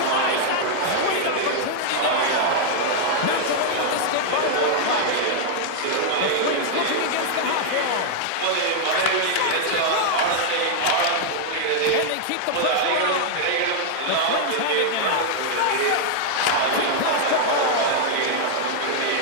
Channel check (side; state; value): both; different; correlation -0.01